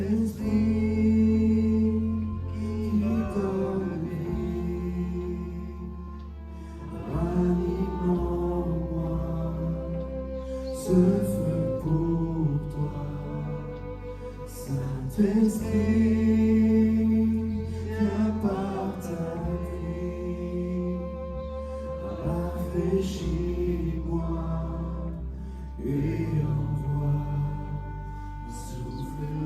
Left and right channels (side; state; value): both; identical; correlation 1.00